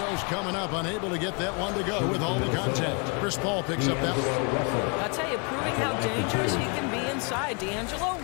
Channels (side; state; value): right; quieter; 34.9 dB